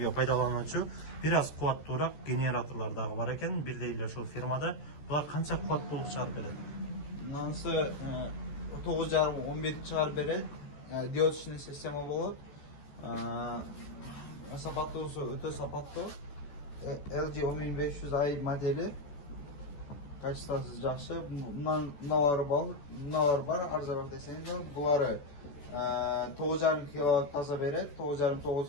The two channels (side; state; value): right; late; 14 ms